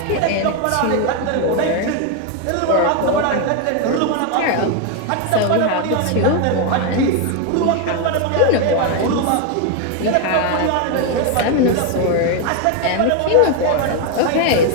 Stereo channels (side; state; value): both; different; correlation 0.01